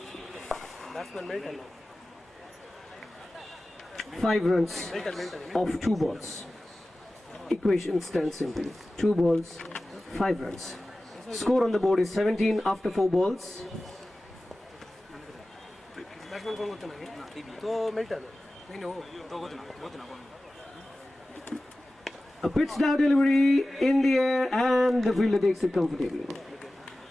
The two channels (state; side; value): normal; both; correlation 0.96